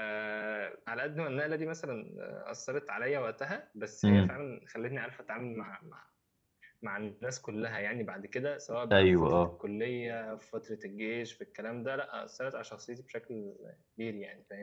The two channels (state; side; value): identical; both; correlation 1.00